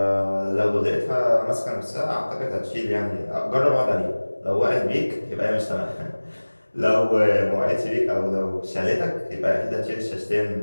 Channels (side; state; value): both; inverted; correlation -1.00